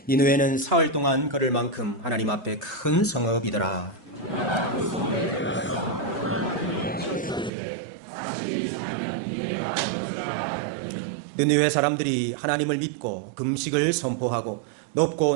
니느웨는 사흘 동안 걸을 만큼 하나님 앞에 큰 성읍이더라. 느느웨 사람들이 하나님을 믿고 금식을 선포하고 높고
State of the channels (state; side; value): drops out; left; at 7.5 s